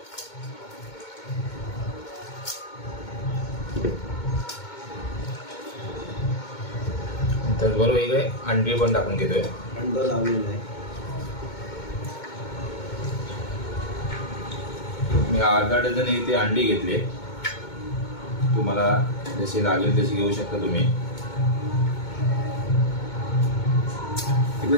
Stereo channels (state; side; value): late; right; 2.2 ms